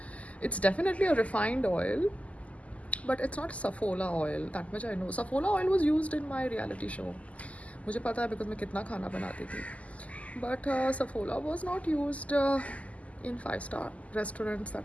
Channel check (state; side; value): late; right; 0.069 ms